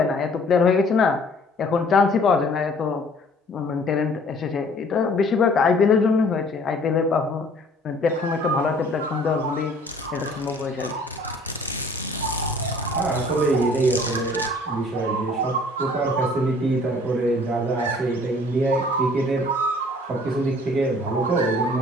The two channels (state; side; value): normal; both; correlation 0.54